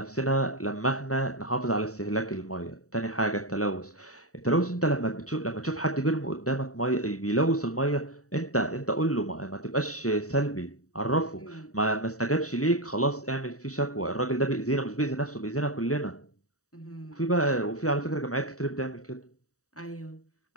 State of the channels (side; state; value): right; late; 0.65 ms